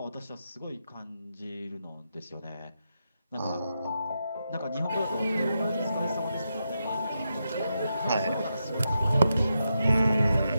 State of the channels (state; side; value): inverted; both; correlation -0.86